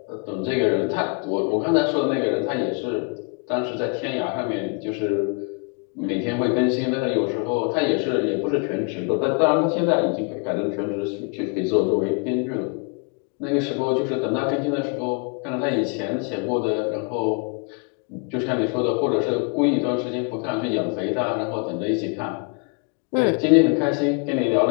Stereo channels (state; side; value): quieter; right; 37.8 dB